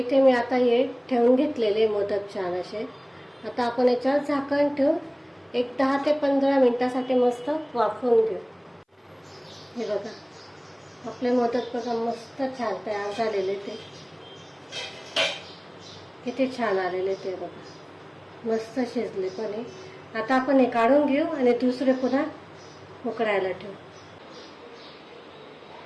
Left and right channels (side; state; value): both; identical; correlation 1.00